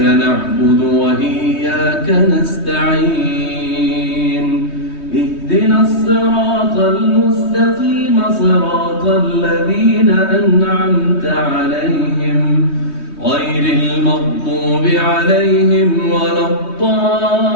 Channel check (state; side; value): late; right; 3.2 ms